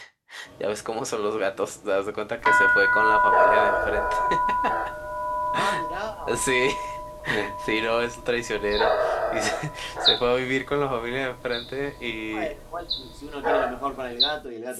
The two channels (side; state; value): both; identical; correlation 1.00